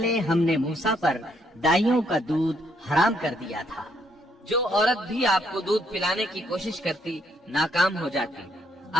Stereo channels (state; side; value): normal; both; correlation 0.72